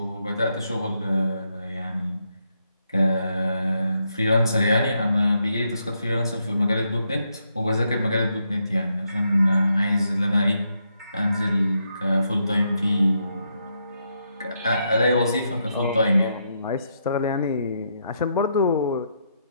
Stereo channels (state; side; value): inverted; both; correlation -0.79